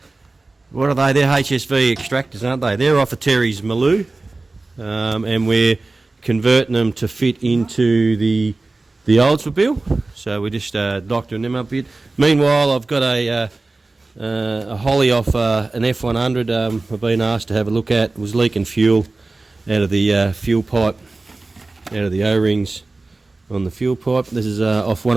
are they? They're HSV extractors, aren't they? They're off of Terry's Maloo, and we're converting them to fit into the Oldsmobile. So we're just doctoring them up a bit. Meanwhile, I've got a Holly off an F100 I've been asked to have a look at. It was leaking fuel out of the fuel pipe, out of the O-rings on the fuel pipe. This is off one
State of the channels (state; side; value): quieter; left; 3.3 dB